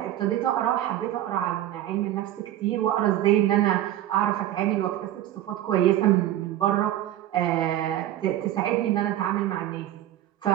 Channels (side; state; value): left; quieter; 12.9 dB